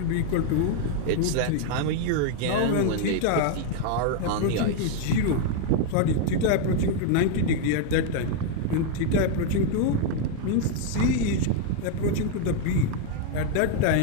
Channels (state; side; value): different; both; correlation 0.00